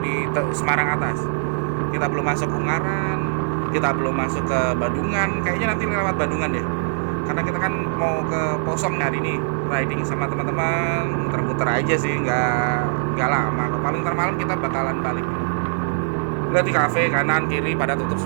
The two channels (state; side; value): silent; left; 60 dB below the other